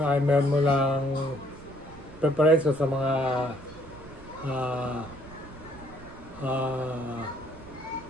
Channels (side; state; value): right; noise; rumble, 18 dB below the sound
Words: ay meron mo lang preparation sa mga